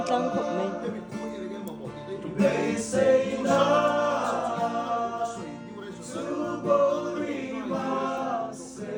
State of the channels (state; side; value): identical; both; correlation 1.00